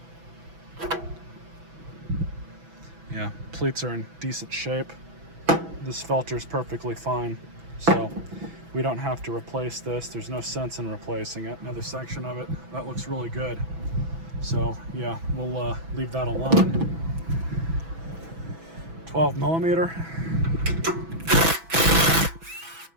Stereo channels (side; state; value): left; late; 6.1 ms